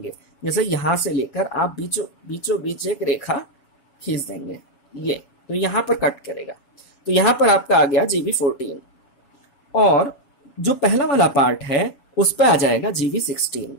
जैसे यहां से लेकर आप बीचों बीच एक रेखा खींच देंगे, ये तो यहां पर कट करेगा। तो यहां पर आपका आ गया GV14, और जो पहला वाला पार्ट है उस पर आ जाएगा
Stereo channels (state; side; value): late; right; 7.3 ms